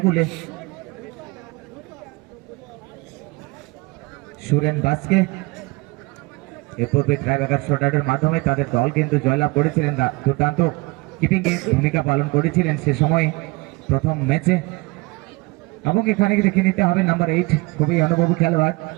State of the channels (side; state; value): left; quieter; 24.7 dB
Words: সুরেন বাসকে এ পূর্বে ট্রাইব্রেকার শটআউটের মাধ্যমে তাদের দল কিন্তু জয়লাভ করেছিলেন দুর্দান্ত কিপিং এ ভূমিকা পালন করেছিলেন সে সময় প্রথম ম্যাচে এবং এখানে দেখে নিতে হবে নাম্বার 8 খুবই অনুভবী খেলোয়াড়